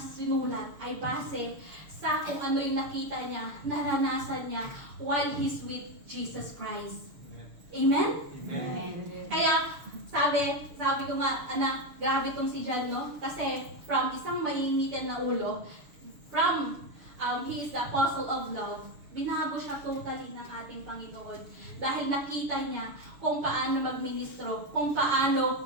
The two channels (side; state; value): left; late; 6.8 ms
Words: ay base sa kung ano yung nakita niya, naranasan niya while he's with Jesus Christ. Amen? Amen. Kaya, sabi ko nga, anak, grabe itong si John, no? Kasi from isang mainitin na ulo, from he is the apostle of love, binago siya totally ng ating Panginoon. Dahil nakita niya kung paano magministro, kung paano